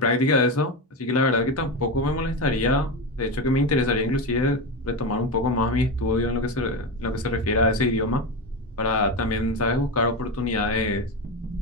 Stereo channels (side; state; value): both; normal; correlation 0.17